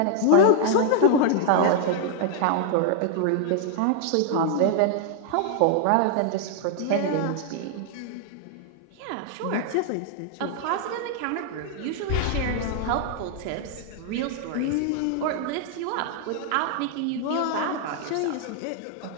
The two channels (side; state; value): both; different; correlation 0.00